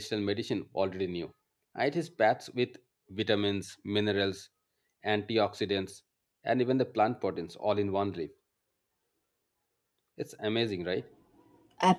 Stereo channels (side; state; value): both; identical; correlation 1.00